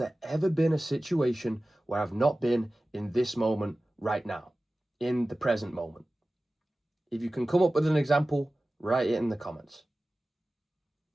ever been a situation where I've not been in this moment right now, in the present moment? If you can come up with an example, write it in the comments.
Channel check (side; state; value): both; normal; correlation 0.96